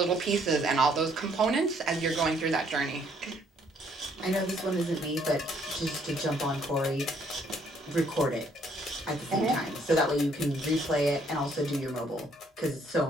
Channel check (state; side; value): normal; both; correlation 0.66